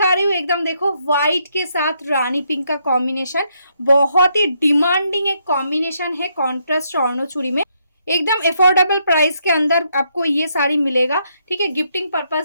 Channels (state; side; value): inverted; both; correlation -0.75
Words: रही हूँ एकदम देखो व्हाइट के साथ रानी पिंक का कॉम्बिनेशन, बहुत ही डिमांडिंग एक कॉम्बिनेशन है कॉन्ट्रास्ट स्वर्णो चूड़ी में। एकदम अफोर्डेबल प्राइस के अंदर आपको ये साड़ी मिलेगा। ठीक है, गिफ्टिंग